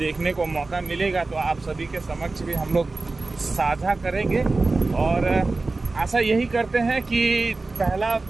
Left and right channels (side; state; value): left; quieter; 3.5 dB